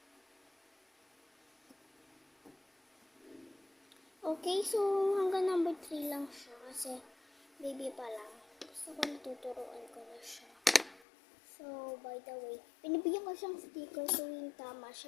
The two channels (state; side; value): drops out; right; at 11.0 s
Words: Okay, so hanggang number 3 lang siya kasi baby pa lang. Gusto ko natuturuan ko na siya. So, by the way, pinibigyan ko siyang sticker tuwing tama